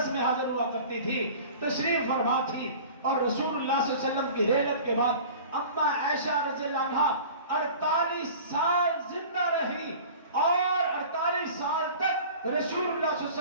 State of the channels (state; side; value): inverted; both; correlation -0.41